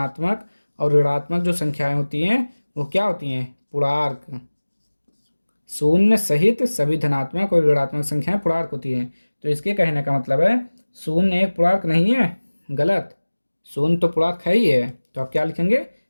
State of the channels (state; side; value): inverted; both; correlation -1.00